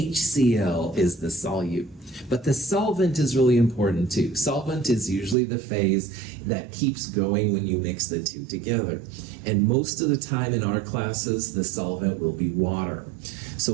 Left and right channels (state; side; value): drops out; left; at 5.4 s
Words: is the solute. But the solvent is really important too. Solvent is usually the phase that keeps going when you mix the 2 together. And most of the time in our classes, the solvent will be water.